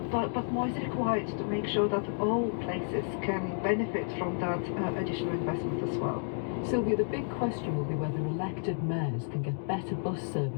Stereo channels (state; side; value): silent; right; 57 dB below the other